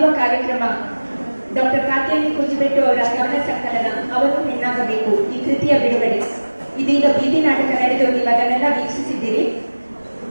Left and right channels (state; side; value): inverted; both; correlation -1.00